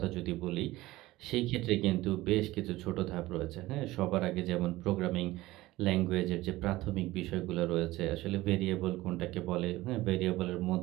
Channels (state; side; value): quieter; left; 18.1 dB